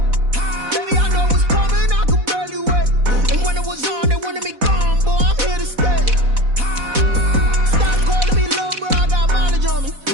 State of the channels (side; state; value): left; late; 4.1 ms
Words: Baby, I know what's coming, I could barely wait. And when it was on, they wanted me gone, boy, I'm here to stay. Stop calling me low, bro, I got mileage on me.